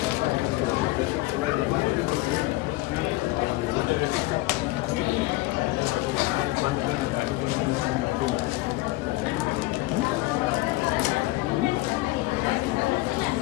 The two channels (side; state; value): right; quieter; 19.8 dB